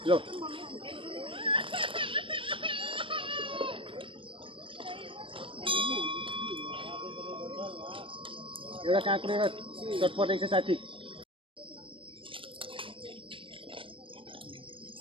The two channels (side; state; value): left; late; 0.25 ms